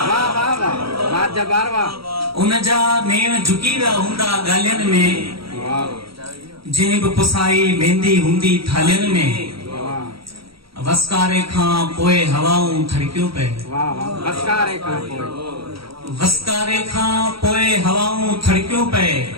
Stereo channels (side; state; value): left; late; 0.75 ms